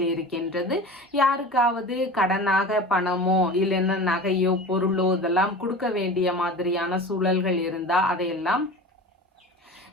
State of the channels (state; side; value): normal; both; correlation 0.35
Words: இருக்கின்றது. யாருக்காவது கடனாக பணமோ இல்லைன்னா நகையோ பொருளோ இதெல்லாம் கொடுக்க வேண்டிய மாதிரியான சூழல்கள் இருந்தா அதையெல்லாம்